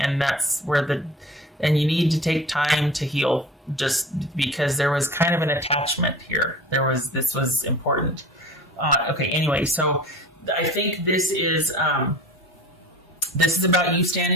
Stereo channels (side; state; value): both; normal; correlation 0.40